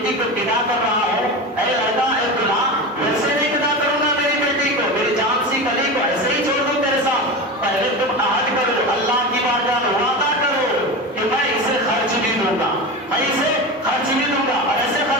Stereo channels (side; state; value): both; normal; correlation 0.25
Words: کو بدا کر رہا ہوں، اے لڑکا اے دلہا، ویسے نہیں بدا کروں گا میری بیٹی کو، میری جان سی کلی کو ایسے ہی چھوڑ دوں تیرے ساتھ. پہلے تم عہد کرو، اللہ کی بارگاہ میں وعدہ کرو کہ میں اسے خرچ بھی دوں گا، میں اسے خرچ بھی دوں گا. اور ایسے